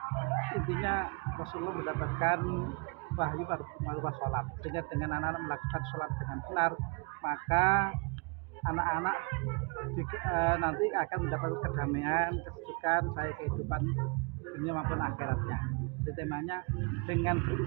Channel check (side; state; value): left; quieter; 32.1 dB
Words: intinya Rasulullah mendapatkan wahyu pada sholat, sehingga dengan anak-anak melakukan sholat dengan benar, maka anak-anak nanti akan mendapat kedamaian, kesejukan, baik kehidupan dunia maupun akhiratnya. Jadi temanya dengan